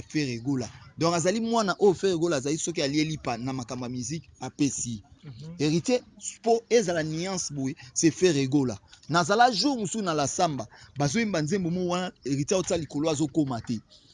fait régola. Donc azali mwana o fait régola azali soki alieli pa na makamba musique apesi. Héritier po ezala nuance boy c'est fait régola. Nazala jour musu na la samba bazo imba nzembo mo wana héritier otsa likolo azokoma te.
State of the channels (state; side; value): identical; both; correlation 1.00